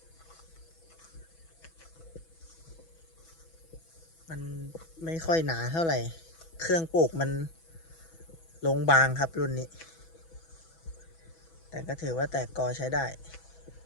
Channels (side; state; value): right; late; 6.1 ms